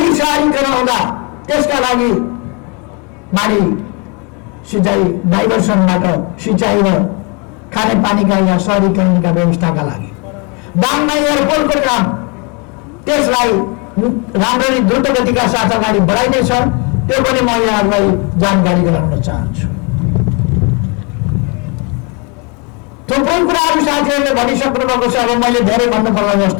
सहरीकरण हुँदा त्यसका लागि माडी सिँचाइ डाइभर्सनबाट सिँचाइ र खानेपानीका या सहरीकरणका व्यवस्थाका लागि दाङमा एयरपोर्टको काम, त्यसलाई राम्ररी द्रुत गतिका साथ अगाडि बढाइनेछ। त्यो पनि म यहाँहरूलाई जानकारी गराउन चाहन्छु। थुप्रै कुराहरू साथीहरूले भनिसक्नु भएको छ, अब मैले धेरै भन्नु पर्ला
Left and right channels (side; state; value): right; quieter; 32.4 dB